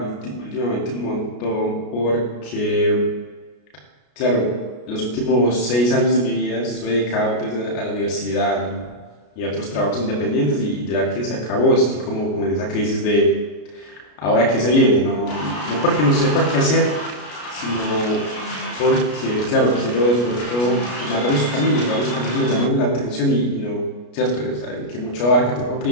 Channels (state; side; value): late; right; 33 ms